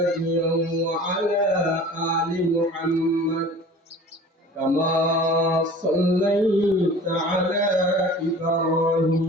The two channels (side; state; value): both; normal; correlation 0.43